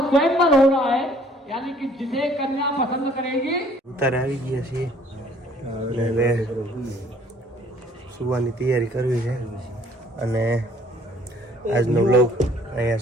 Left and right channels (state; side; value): normal; both; correlation 0.58